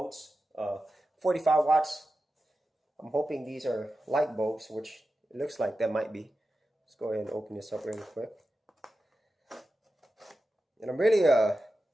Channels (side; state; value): both; normal; correlation 0.92